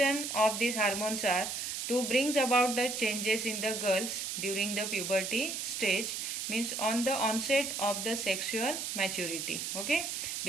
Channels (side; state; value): right; noise; hiss, 4 dB below the sound